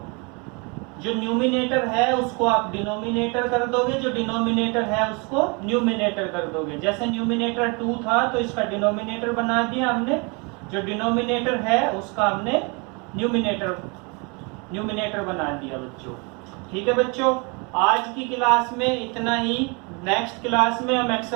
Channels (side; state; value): left; quieter; 31.2 dB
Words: जो न्यूमिनेटर है उसको आप डिनोमिनेटर कर दोगे, जो डिनोमिनेटर है उसको न्यूमिनेटर कर दोगे। जैसे न्यूमिनेटर 2 था तो इसका डिनोमिनेटर बना दिया हमने, जो डिनोमिनेटर है उसका हमने न्यूमिनेटर बना दिया बच्चों। ठीक है बच्चों, आज की क्लास में इतना ही। नेक्स्ट क्लास में हम